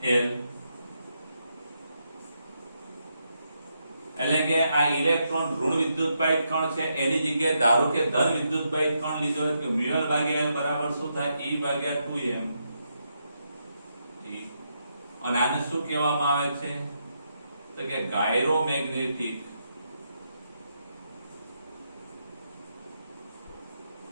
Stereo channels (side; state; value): both; inverted; correlation -0.81